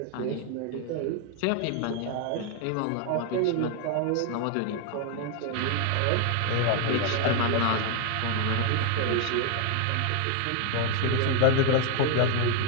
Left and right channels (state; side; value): different; both; correlation 0.00